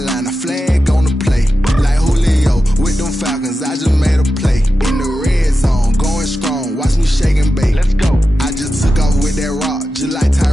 a flag on the play. Like Julio with them Falcons, I just made a play. In the red zone, going strong, watch me shake and bake. Let's go. I just took off with that rock, just like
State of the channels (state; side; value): normal; both; correlation 0.91